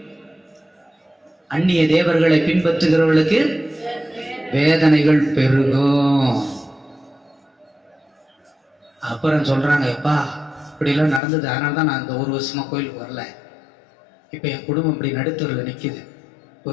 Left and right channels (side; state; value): right; drops out; at 11.2 s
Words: அந்நிய தேவர்களை பின்பற்றுகிறவர்களுக்கு வேதனைகள் பெருகும். அப்புறம் சொல்றாங்க, எப்பா இப்படிலாம் நடந்தது, அதனால தான் நான் இந்த 1 வருஷமா கோயிலுக்கு வரல. இப்ப என் குடும்பம் இப்படி நடுத்தூரில் நிக்குது,